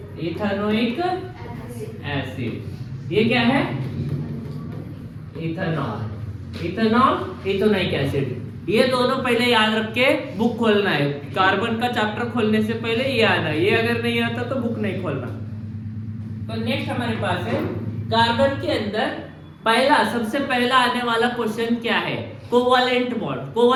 इथेनोइक एसिड। ये क्या है, इथेनोइक एसिड। ये दोनों पहले याद रख के बुक खोलना है। कार्बन का चैप्टर खोलने से पहले ये आना है, ये अगर नहीं आता तो बुक नहीं खोलना। तो नेक्स्ट हमारे पास है कार्बन के अंदर सबसे पहला आने वाला क्वेश्चन क्या है, कोवैलेंट बॉन्ड।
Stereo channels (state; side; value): identical; both; correlation 1.00